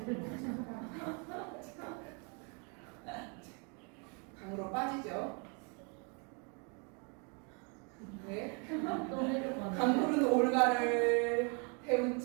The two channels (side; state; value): left; quieter; 35.7 dB